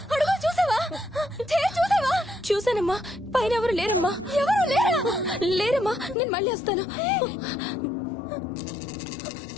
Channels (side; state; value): right; drops out; at 6.2 s